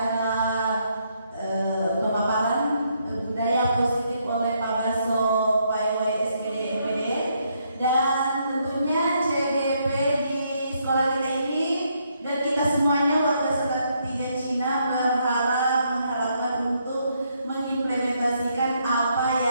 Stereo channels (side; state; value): both; inverted; correlation -0.74